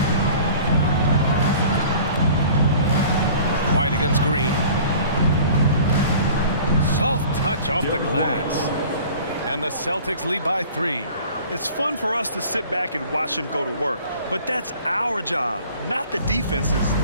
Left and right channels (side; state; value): both; inverted; correlation -0.46